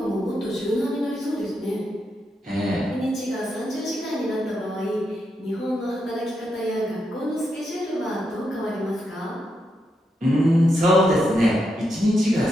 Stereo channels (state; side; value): normal; both; correlation 0.83